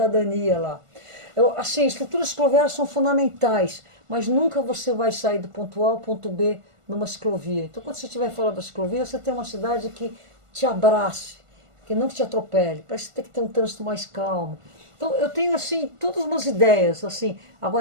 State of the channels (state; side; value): late; left; 1.5 ms